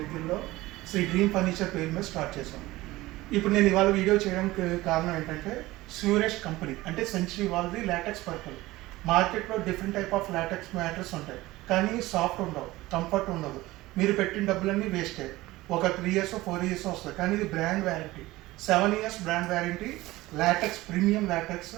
శ్రీ డ్రీమ్ ఫర్నిచర్ పేరు మీద స్టార్ట్ చేశాం. ఇప్పుడు నేను ఇవాళ వీడియో చేయడానికి కారణం ఏంటంటే స్యూరెస్ట్ కంపెనీ అంటే సెంచరీ వాళ్ళది లాటెక్స్ పర్పల్. మార్కెట్లో different type of LaTeX matters ఉంటాయి, కానీ సాఫ్ట్ ఉండవు, కంఫర్ట్ ఉండదు. మీరు పెట్టిన డబ్బులన్నీ వేస్టే. ఒక 3 years 4 years వస్తుంది, కానీ ఇది brand warranty. 7 years brand warranty. LaTeX, premium LaTeX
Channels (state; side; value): quieter; left; 18.5 dB